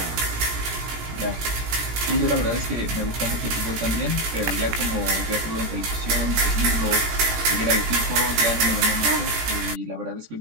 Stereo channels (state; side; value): late; left; 17 ms